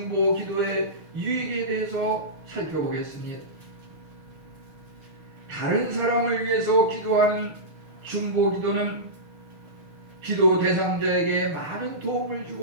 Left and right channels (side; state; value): left; late; 6.6 ms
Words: 기도의 유익에 대해서 살펴보겠습니다. 다른 사람을 위해서 기도하는 중보 기도는 기도 대상자에게 많은 도움을